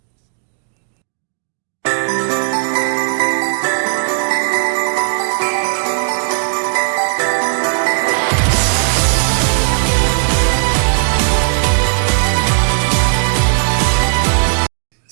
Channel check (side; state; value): left; silent; digital silence